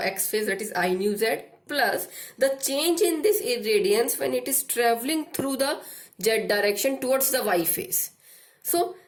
x phase, that is I nu z, plus the change in this irradiance when it is traveling through the z direction towards the y phase. So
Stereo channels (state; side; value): identical; both; correlation 1.00